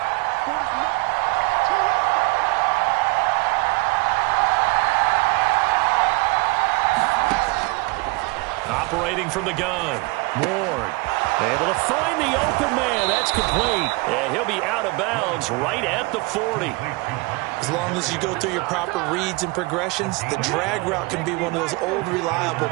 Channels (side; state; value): left; quieter; 25.6 dB